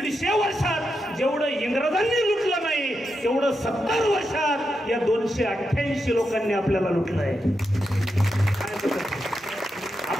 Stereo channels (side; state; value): both; normal; correlation 0.86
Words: वर्षात जेवढं इंग्रजांनी लुटलं नाही तेवढं 70 वर्षात या 288 लोकांनी आपल्याला लुटलं आहे.